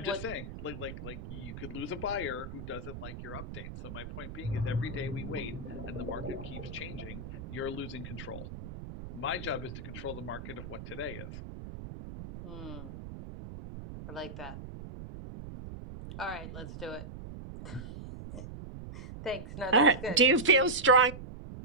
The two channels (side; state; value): right; noise; rumble, 10 dB below the sound